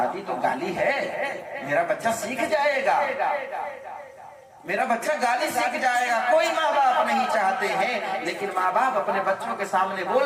تو گالی ہے، میرا بچہ سیکھ جائے گا، میرا بچہ گالی سیکھ جائے گا۔ کوئی ماں باپ نہیں چاہتے ہیں، لیکن ماں باپ اپنے بچوں کے سامنے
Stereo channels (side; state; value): both; identical; correlation 1.00